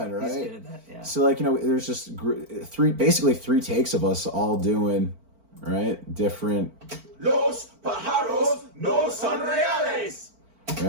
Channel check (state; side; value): late; left; 4.4 ms